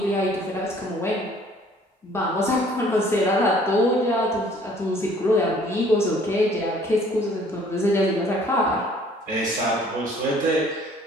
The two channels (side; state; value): both; normal; correlation 0.56